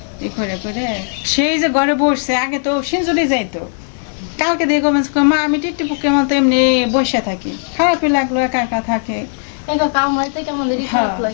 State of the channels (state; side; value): silent; right; digital silence